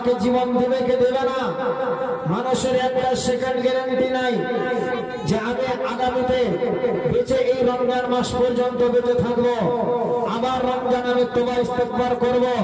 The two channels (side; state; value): both; identical; correlation 1.00